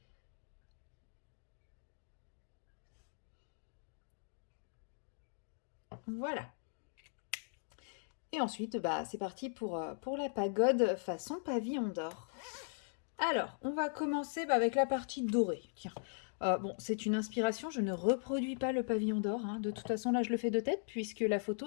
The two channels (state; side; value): silent; right; digital silence